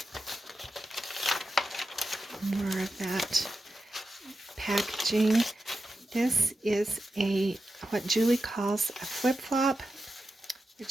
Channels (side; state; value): both; normal; correlation 0.90